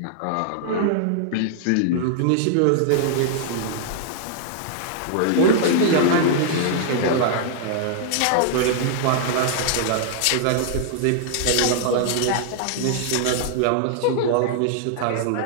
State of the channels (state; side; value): different; both; correlation -0.01